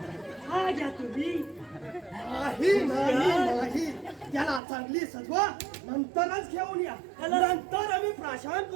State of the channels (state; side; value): drops out; left; at 4.6 s